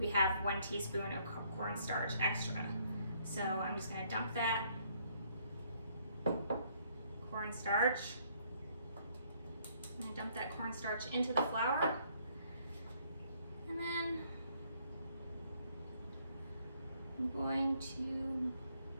have 1 teaspoon of cornstarch extra. So I'm just going to dump that cornstarch. I'm going to dump that cornstarch into the flour, and then I'm going to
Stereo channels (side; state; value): both; inverted; correlation -0.67